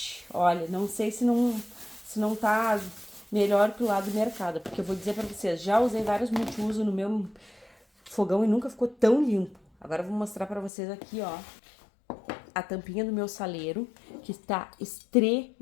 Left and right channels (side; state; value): right; drops out; at 10.7 s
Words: Olha, não sei se não tá melhor que o lado do mercado, porque eu vou dizer pra vocês, já usei vários multiuso no meu fogão e nunca ficou tão limpo. Agora eu vou mostrar pra vocês aqui, ó, a tampinha do meu saleiro, que está